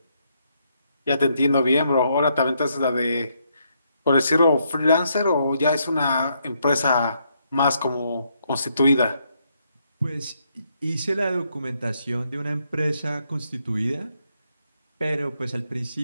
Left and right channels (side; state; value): both; inverted; correlation -0.75